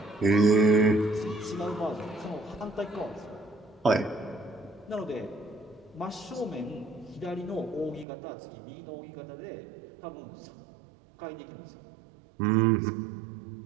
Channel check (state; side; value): drops out; left; at 8.1 s